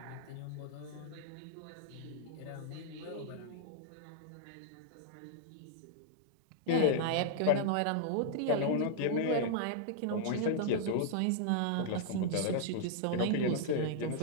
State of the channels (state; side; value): different; both; correlation -0.01